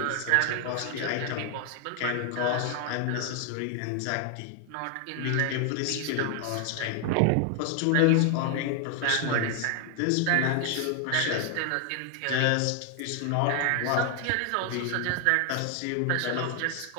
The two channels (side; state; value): both; different; correlation 0.00